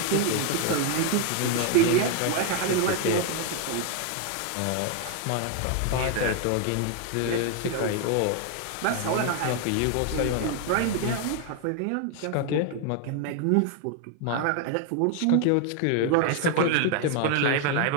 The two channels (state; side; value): different; both; correlation 0.00